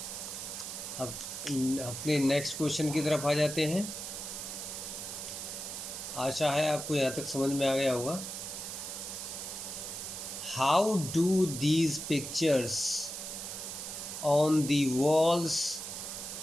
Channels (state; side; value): noise; right; hiss, 7 dB below the sound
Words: अब अपने नेक्स्ट क्वेश्चन की तरफ आ जाते हैं। आशा है आपको यहाँ तक समझ में आ गया होगा। How do these pictures on the walls